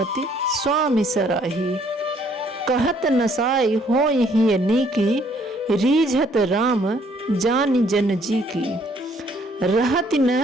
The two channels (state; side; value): normal; both; correlation 0.64